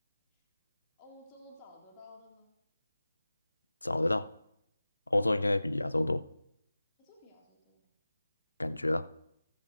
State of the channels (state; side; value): inverted; both; correlation -0.98